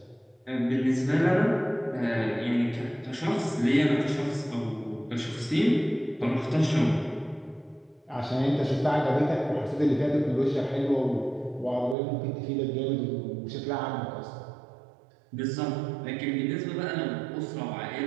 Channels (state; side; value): drops out; left; at 12.0 s